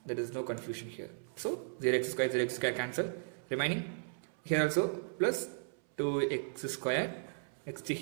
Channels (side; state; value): left; silent; 54 dB below the other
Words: There is no confusion here. So 0x square cancel. Remaining here also plus 2x square. Next